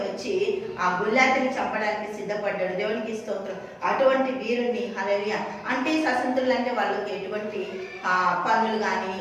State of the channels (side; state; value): both; identical; correlation 1.00